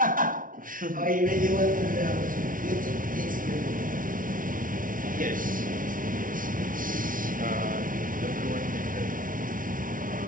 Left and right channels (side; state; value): left; late; 0.39 ms